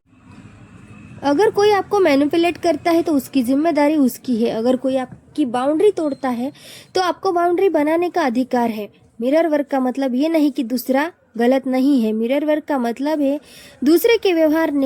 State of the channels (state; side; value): identical; both; correlation 1.00